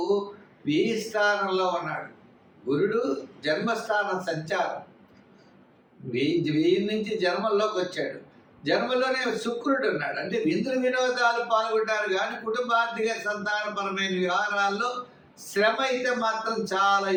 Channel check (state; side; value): identical; both; correlation 1.00